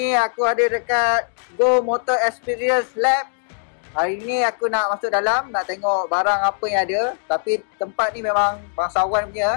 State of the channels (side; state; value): right; silent; digital silence